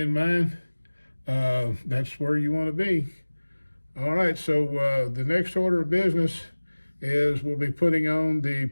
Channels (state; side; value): inverted; both; correlation -1.00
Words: mind, that's where you want to be. All right, so the next order of business is we'll be putting on the